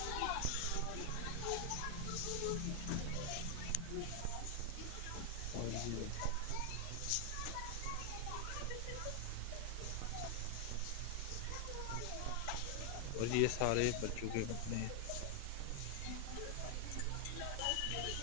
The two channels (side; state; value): both; different; correlation 0.00